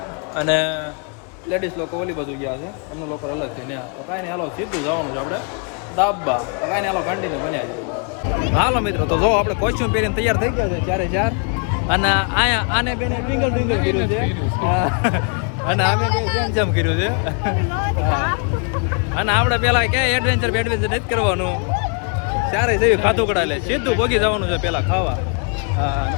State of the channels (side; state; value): right; quieter; 39.3 dB